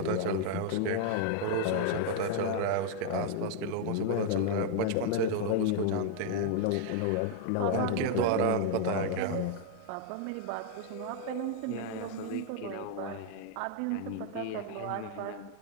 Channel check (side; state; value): both; different; correlation 0.00